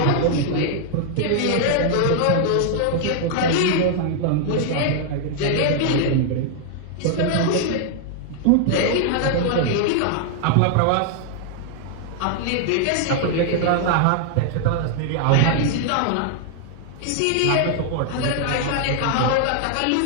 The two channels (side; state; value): both; different; correlation 0.00